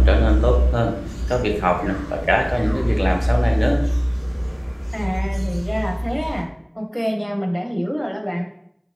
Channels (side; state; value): both; identical; correlation 1.00